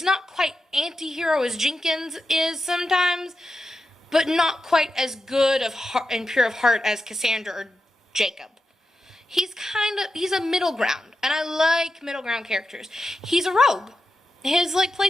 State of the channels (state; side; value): normal; both; correlation 0.89